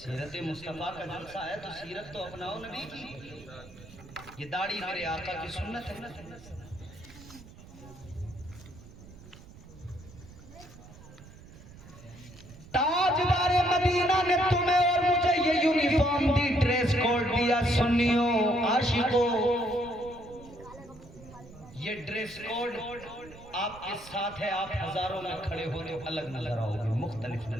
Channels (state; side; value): noise; right; rumble, 19 dB below the sound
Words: मुस्तफा का जलसा है, तो सीरत तो अपनाओ नबी की। ये दाढ़ी मेरे आका की सुन्नत है। ताजदार मदीना ने तुम्हें और मुझे ये यूनिफॉर्म दी, ड्रेस कोड दिया। सुन्नियों, आशिकों, ये ड्रेस कोड आपके साथ है। आप हजारों में खड़े हो तो अलग नजर आओगे, मुख्तलिफ